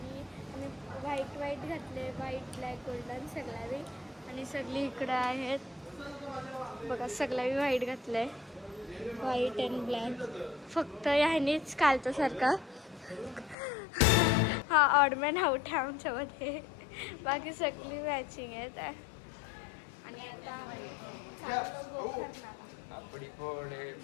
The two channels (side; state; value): right; drops out; at 13.6 s